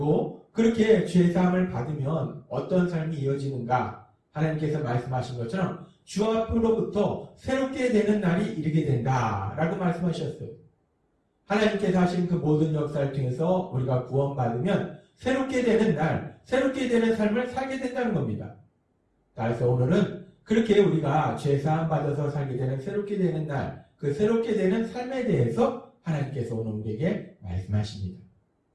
그렇게 죄사함을 받으면 어떤 삶이 이어지는가? 하나님께서 말씀하신 것처럼 주 앞으로부터 새롭게 되는 날이 이르게 된다라고 말씀하셨어요. 하나님께서 하신 그 모든 역사를 통해서 우리가 구원받으면 새롭게 되는 날, 새롭게 되는 삶을 살게 된다는 겁니다. 그래서 오늘은 그렇게 우리가 죄사함 받아서 살게 되는 새롭게 되는 날, 그 새롭게 되는 삶에 대해서 하나님께서 오늘 우리에게 말씀하십니다.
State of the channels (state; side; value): identical; both; correlation 1.00